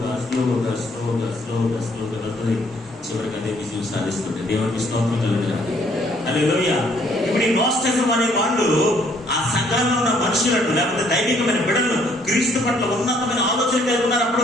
స్లోగా స్లోగా స్లోగా స్లోగా వెళ్తుంది, చివరికి అదే విజయం సాధిస్తుంది. దేవునికి స్తోత్రం కలుగుతుంది. హల్లెలూయా. ఇప్పుడు ఈ నోస్టిజం అనే వాళ్ళు ఆ సంఘంలో ఉన్న మనుషులను, లేకపోతే దైవికమైన బిడ్డలను క్రీస్తు పట్ల ఉన్నతమైన ఆలోచన కలిగి ఉన్నారు అప్పటి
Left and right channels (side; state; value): both; normal; correlation 0.65